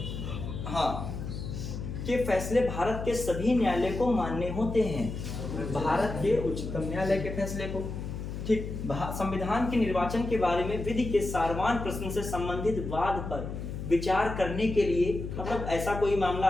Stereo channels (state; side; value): noise; left; hum, 6 dB below the sound